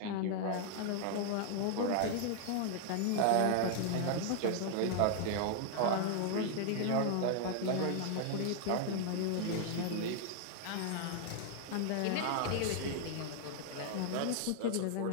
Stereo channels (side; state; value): both; different; correlation 0.00